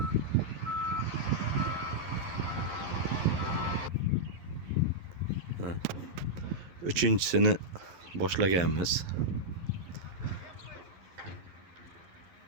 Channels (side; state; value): left; late; 11 ms